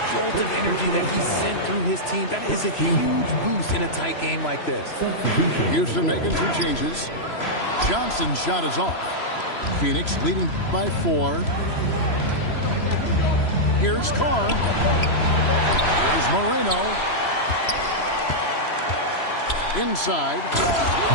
jolt of energy that he sent through his team. That is a huge boost in a tight game like this. Houston making 2 changes. Johnson's shot is off. Phoenix leading by 4. Here's Carr. Here's Moreno. Inside.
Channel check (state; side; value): late; right; 3.0 ms